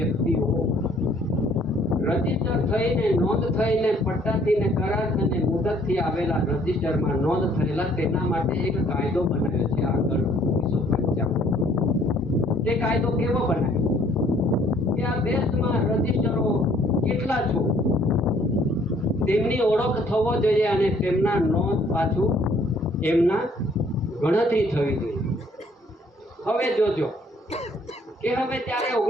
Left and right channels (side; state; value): both; normal; correlation 0.61